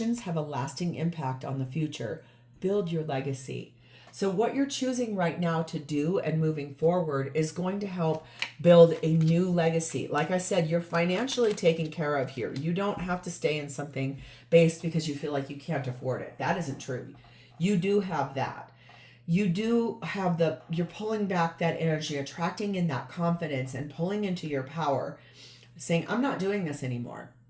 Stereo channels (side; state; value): both; identical; correlation 1.00